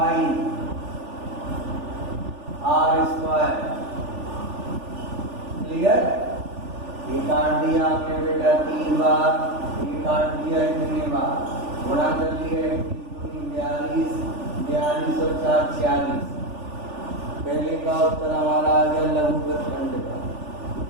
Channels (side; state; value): left; late; 3.4 ms